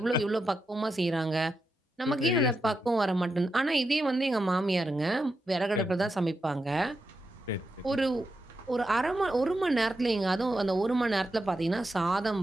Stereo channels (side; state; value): both; normal; correlation 0.87